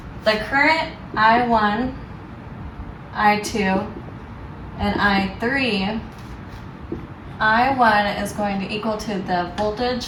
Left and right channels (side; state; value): both; identical; correlation 1.00